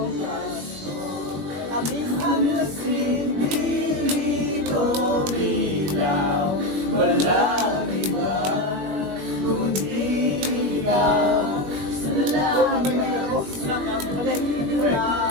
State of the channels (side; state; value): left; late; 21 ms